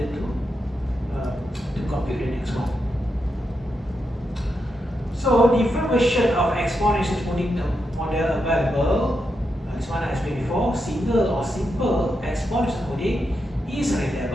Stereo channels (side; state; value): both; normal; correlation 0.85